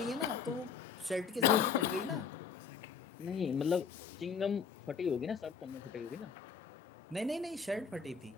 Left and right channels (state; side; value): quieter; right; 6.3 dB